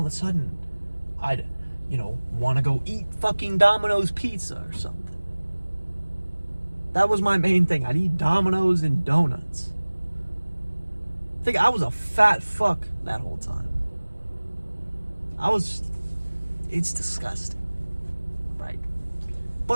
a sudden, I'd, want to go eat fucking Domino's pizza or something. That was my main thing. I'd eat Domino's and donuts. I think I was a fat fuck that whole time. It's disgusting, right?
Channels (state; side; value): inverted; both; correlation -1.00